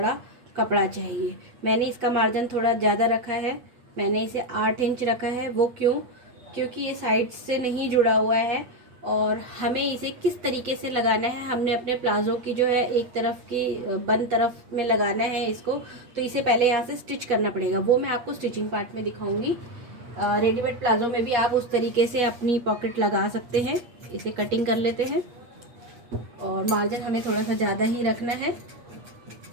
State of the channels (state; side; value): late; left; 8.5 ms